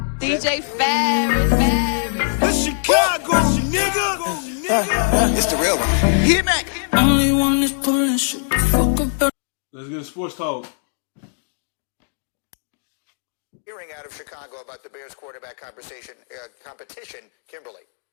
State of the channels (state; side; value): silent; right; digital silence